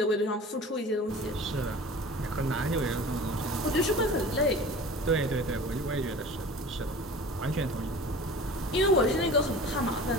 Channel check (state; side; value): normal; both; correlation 0.39